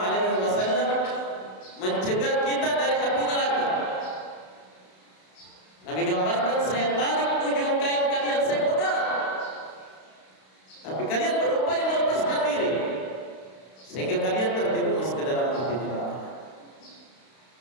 wasallam mencegah kita dari api neraka. Nabi gambarkan, saya tarik ujung kain kalian, saya pegang, tapi kalian berupaya melepaskan diri sehingga kalian terjerumus ke dalam api neraka.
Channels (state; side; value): late; right; 32 ms